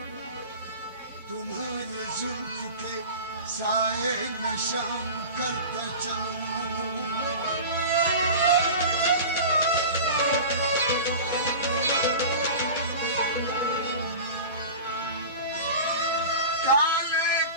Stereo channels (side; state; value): both; inverted; correlation -0.33